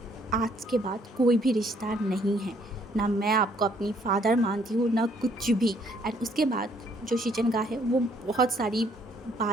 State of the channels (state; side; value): normal; both; correlation 0.65